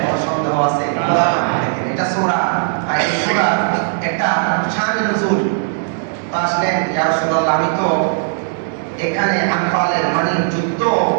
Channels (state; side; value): silent; left; digital silence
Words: সন্দেহ আছে? এটা সূরা, এই সূরা একটা শান নজুল। তো আসলেন ইয়া রাসূলুল্লাহ, আমি তো এখানে আনফালের মানে যুদ্ধ